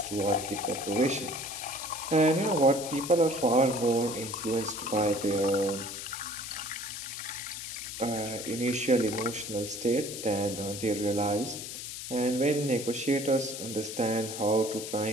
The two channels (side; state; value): left; noise; hiss, 8 dB below the sound